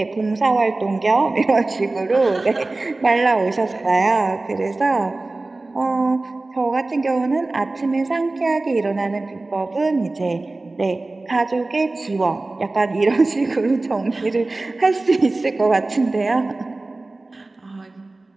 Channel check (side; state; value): left; quieter; 3.1 dB